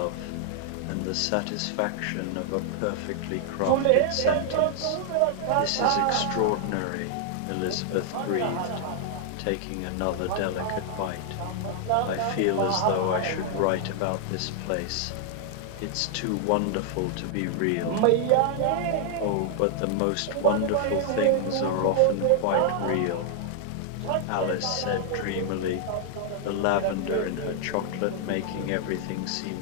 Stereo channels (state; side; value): different; both; correlation 0.00